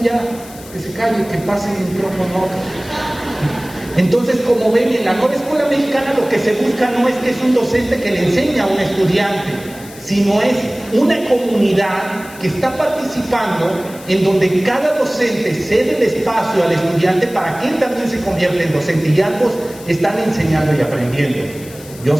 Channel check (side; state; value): left; noise; hiss, 19 dB below the sound